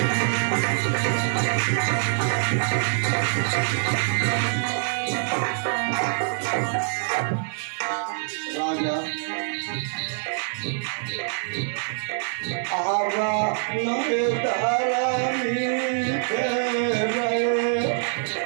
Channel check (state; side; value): silent; left; digital silence